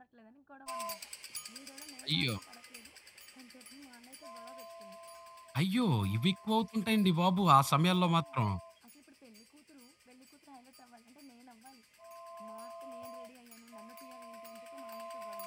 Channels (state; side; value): identical; both; correlation 1.00